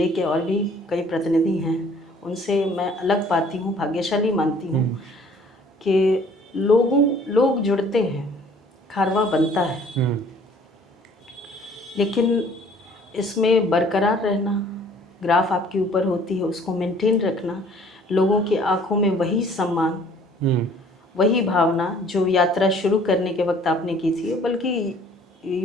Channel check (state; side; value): normal; both; correlation 0.55